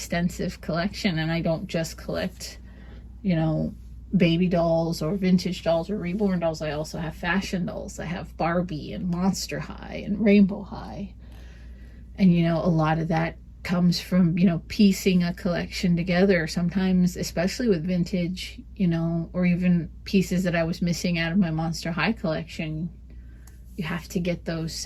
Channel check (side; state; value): both; identical; correlation 1.00